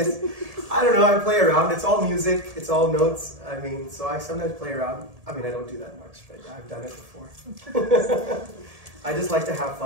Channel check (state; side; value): late; left; 1.7 ms